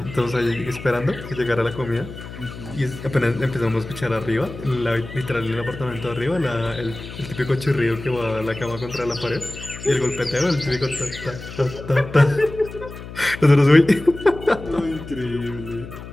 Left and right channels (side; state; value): left; noise; hum, 12 dB below the sound